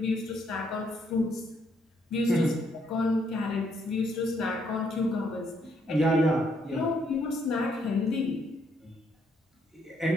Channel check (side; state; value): both; normal; correlation 0.72